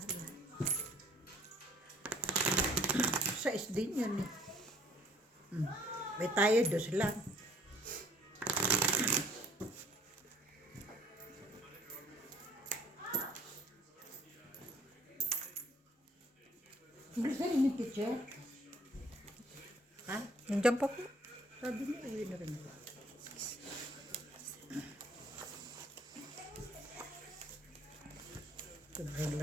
Sa SD yun. May tayo, 2 lang. Hindi sa rin yung teacher. Ha? Nandiyan pa po. Sabi niya, ayun na rin. Sobrang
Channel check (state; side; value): normal; both; correlation 0.58